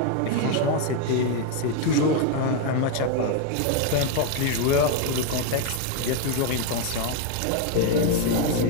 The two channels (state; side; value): different; both; correlation 0.01